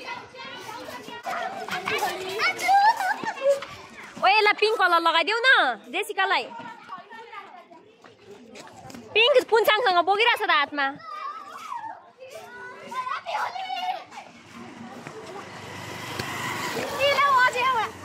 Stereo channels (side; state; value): both; identical; correlation 1.00